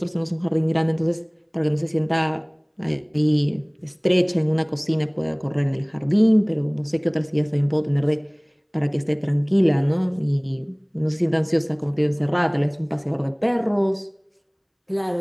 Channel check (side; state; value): both; identical; correlation 1.00